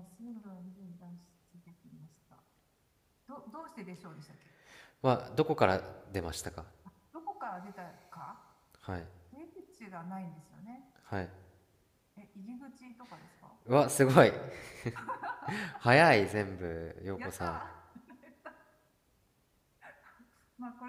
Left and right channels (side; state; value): both; identical; correlation 1.00